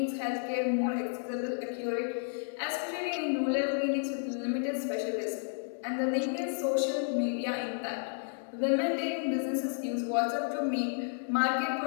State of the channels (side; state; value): right; silent; digital silence